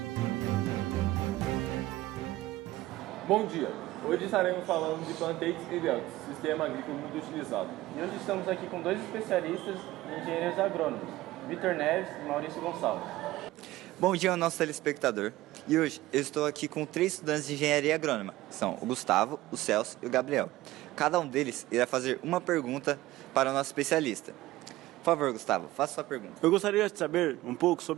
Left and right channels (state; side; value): quieter; left; 17.1 dB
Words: Bom dia! Hoje estaremos falando de plantates e belts, sistema agrícola muito utilizado. E hoje estamos aqui com dois especialistas em engenheiros agrônomos, Vitor Neves e Maurício Gonçalves. Bom dia ao nosso telespectador. E hoje eu estou aqui com 3 estudantes de engenharia agrônoma. São o Gustavo, o Celso e o Gabriel. Cada um deles irá fazer uma pergunta para o nosso especialista. Por favor, Gustavo, faça sua pergunta. Eu gostaria de saber um pouco